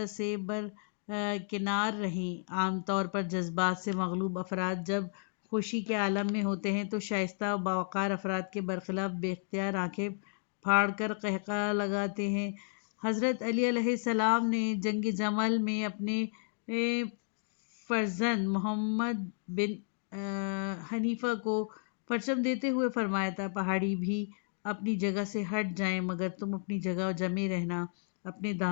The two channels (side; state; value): right; silent; digital silence